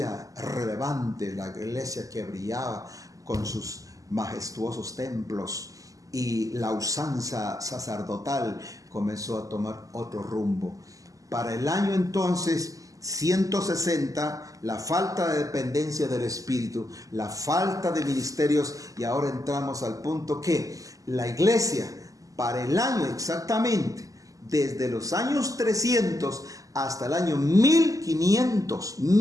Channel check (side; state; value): left; late; 0.17 ms